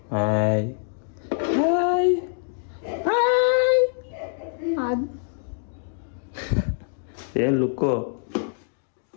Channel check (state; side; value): silent; right; digital silence